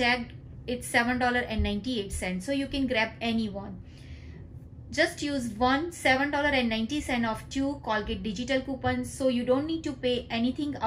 it's $7.98, so you can grab any one. Just use one $7.90 of 2 Colgate digital coupons, so you don't need to pay anything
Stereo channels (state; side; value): identical; both; correlation 1.00